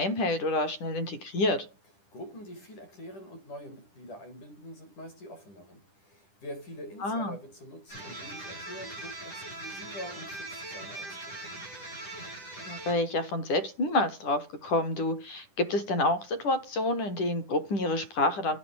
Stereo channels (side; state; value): right; late; 10 ms